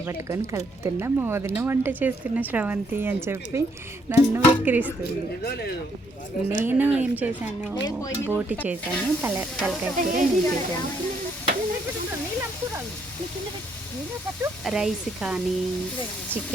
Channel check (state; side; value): normal; both; correlation 0.71